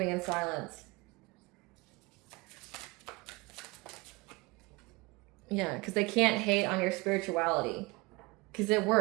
in silence. Yeah, because they can't hate on your spirituality. Because it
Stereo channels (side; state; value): left; quieter; 24.7 dB